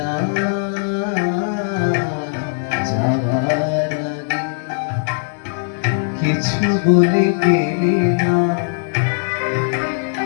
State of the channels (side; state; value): right; silent; digital silence